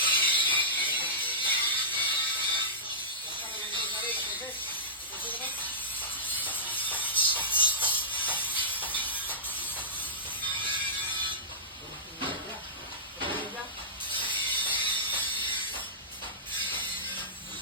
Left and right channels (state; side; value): normal; both; correlation -0.16